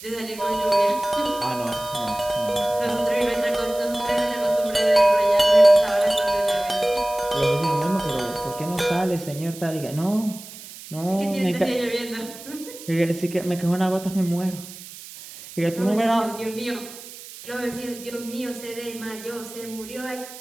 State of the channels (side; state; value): right; noise; hiss, 15 dB below the sound